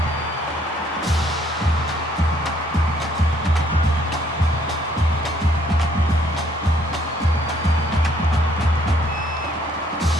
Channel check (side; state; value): both; normal; correlation 0.64